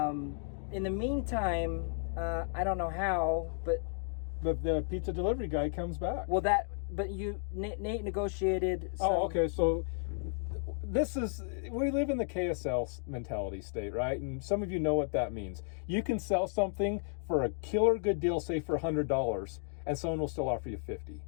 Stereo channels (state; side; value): silent; right; 55 dB below the other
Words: In the meantime, I don't know how, but the pizza delivery guy comes back. Well, Nate negotiated. Okay. So we live in the KSL mentality state, right? And some of you know what that means. You can sell something for a killer good deal, say for $100, and someone will still offer you $50.